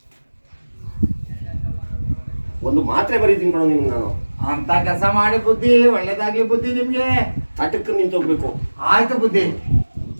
ಒಂದು ಮಾತ್ರೆ ಬರೀತೀನಿ ಕಣೋ ನಿಮ್ಗೆ ನಾನು. ಅಂತ ಕೆಲಸ ಮಾಡಿ ಬುದ್ಧಿ, ಒಳ್ಳೇದಾಗ್ಲಿ ಬುದ್ಧಿ ನಿಮ್ಗೆ. ತಟಕ್ಕೆ ನಿಂತೋಗ್ಬೇಕು. ಆಯ್ತು ಬುದ್ಧಿ.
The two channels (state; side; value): inverted; both; correlation -1.00